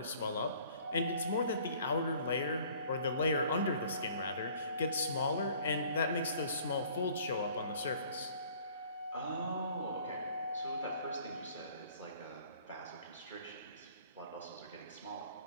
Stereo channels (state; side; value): inverted; both; correlation -0.54